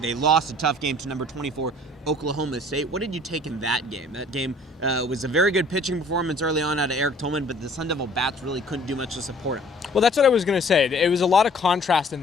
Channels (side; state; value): both; normal; correlation 0.54